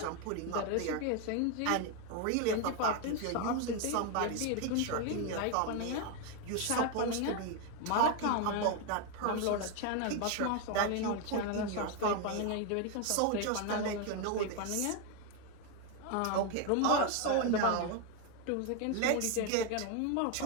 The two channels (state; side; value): different; both; correlation 0.01